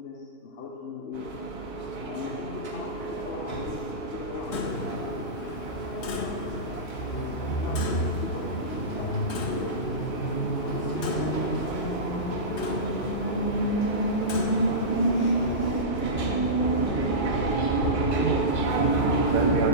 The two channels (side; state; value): right; late; 3.2 ms